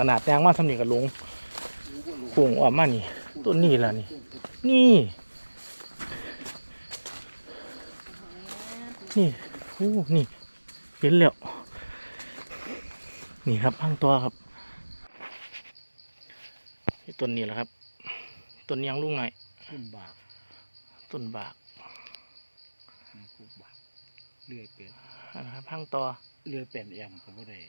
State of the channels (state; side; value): inverted; both; correlation -1.00